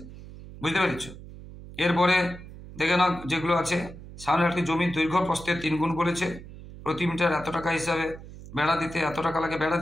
বুঝতে পেরেছ? এরপরে দেখে নাও যেগুলো আছে, সামনে একটি জমির দৈর্ঘ্য প্রস্থের 3 গুণ বলেছে, প্রতি মিটার এত টাকা হিসাবে বেড়া দিতে এত টাকা লাগে, বেড়া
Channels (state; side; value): noise; right; hum, 15 dB below the sound